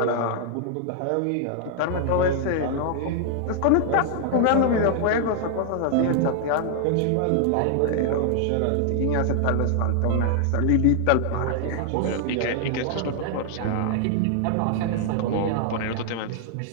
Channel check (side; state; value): both; different; correlation 0.00